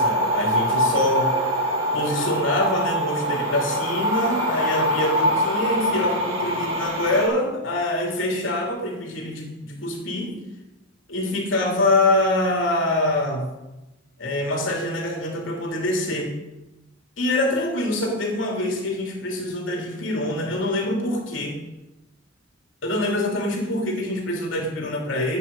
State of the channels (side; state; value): both; normal; correlation -0.03